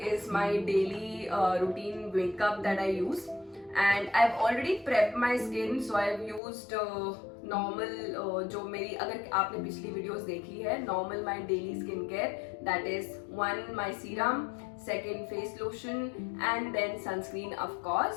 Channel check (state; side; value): drops out; right; at 6.4 s